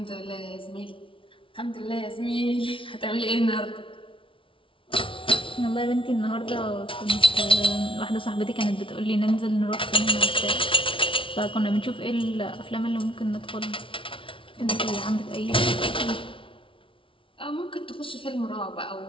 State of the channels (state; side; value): late; right; 0.25 ms